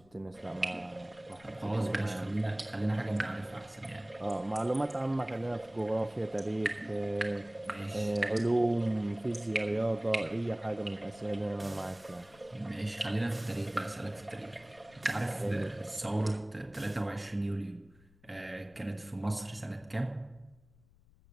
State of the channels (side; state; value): left; noise; rumble, 27 dB below the sound